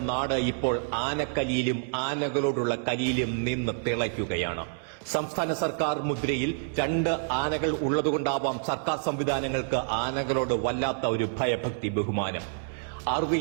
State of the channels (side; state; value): left; silent; 59 dB below the other